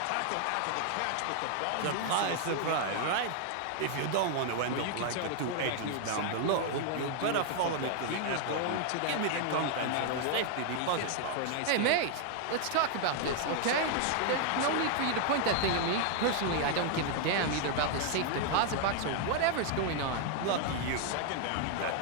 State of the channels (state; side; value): different; both; correlation 0.00